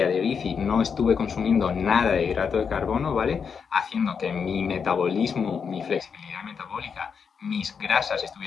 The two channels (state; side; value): quieter; right; 6.3 dB